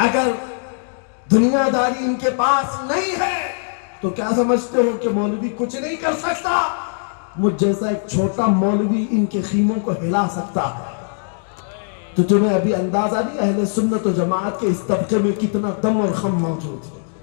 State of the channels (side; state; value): right; silent; digital silence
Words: دنیا داری ان کے پاس نہیں ہے تو کیا سمجھتے ہو کہ مولوی کچھ نہیں کر سکتا؟ مجھ جیسا ایک چھوٹا مولوی ان کے خیموں کو ہلا سکتا ہے. تو تمہیں ابھی اندازہ نہیں اہل سنت و جماعت کے اس طبقے میں کتنا دم اور خم موجود ہے،